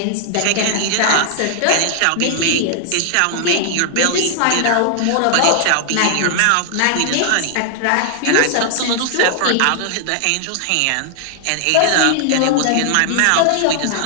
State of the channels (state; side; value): different; both; correlation -0.01